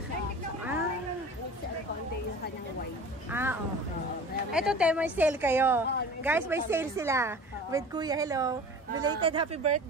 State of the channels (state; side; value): normal; both; correlation 0.39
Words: siya? Conde yung kanyang white. Okay. Ito, te, may sale kayo. Guys, may sale sila. With Kuya, hello. Belated happy